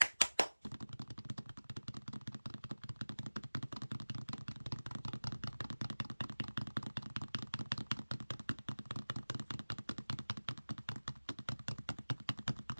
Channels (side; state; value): both; inverted; correlation -1.00